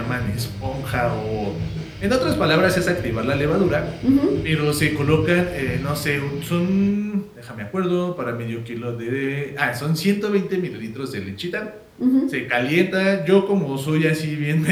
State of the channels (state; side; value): identical; both; correlation 1.00